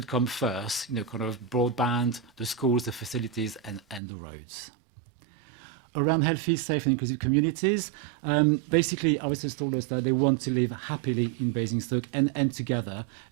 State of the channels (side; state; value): left; drops out; at 4.0 s